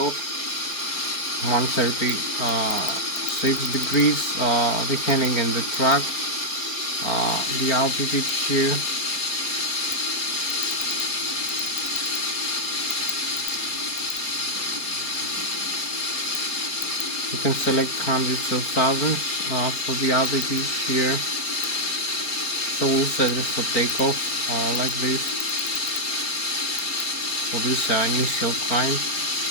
136 degrees, the heading and the track, the altitude here. You can select hundreds of thousands for the altitude here. So we'll set it for takeoff like this, for this initial climb.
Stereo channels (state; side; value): late; right; 4.3 ms